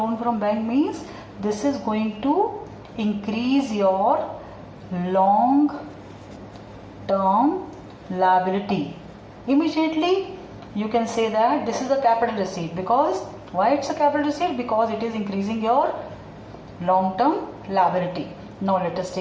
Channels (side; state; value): both; identical; correlation 1.00